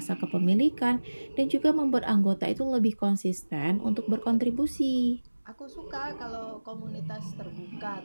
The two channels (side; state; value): both; inverted; correlation -1.00